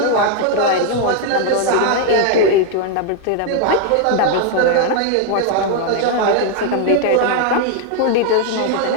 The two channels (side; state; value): both; different; correlation 0.00